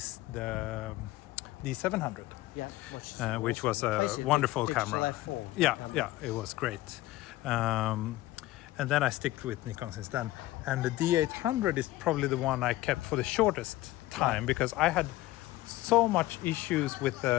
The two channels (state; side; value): quieter; right; 17.1 dB